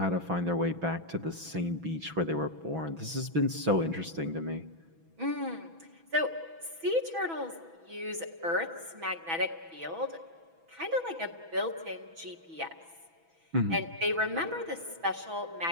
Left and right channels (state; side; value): late; left; 6.1 ms